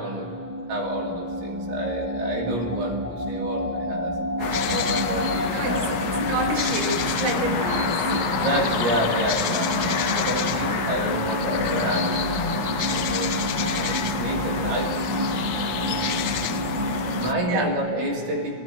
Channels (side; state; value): left; late; 17 ms